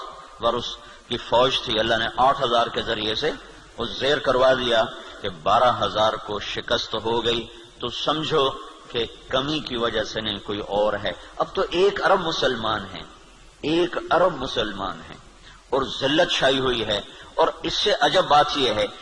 اس کی فوج تھی، اللہ نے 8,000 کے ذریعے سے وہ زیر کروا دیا کہ 12,000 کو شکست ہو گئی۔ تو سمجھو کہ کمی کی وجہ سے نہیں، کوئی اور ہے۔ اب تو 1 ارب مسلمان ہیں، 1 ارب مسلمان ہیں، اور ذلت چھائی ہوئی ہے۔ اور اس سے عجب بات یہ ہے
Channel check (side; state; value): both; identical; correlation 1.00